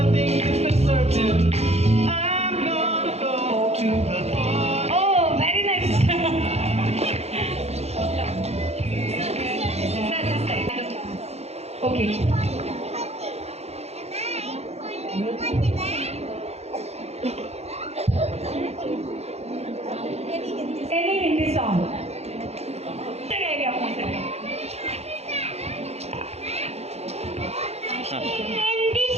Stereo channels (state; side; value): late; left; 0.31 ms